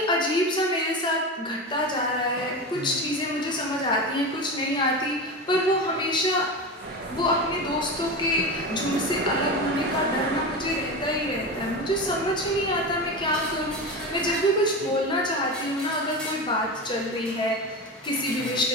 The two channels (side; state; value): both; normal; correlation 0.23